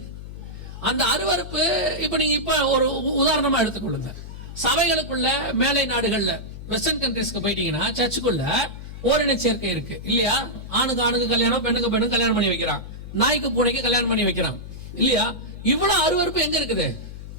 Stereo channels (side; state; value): left; noise; hum, 11 dB below the sound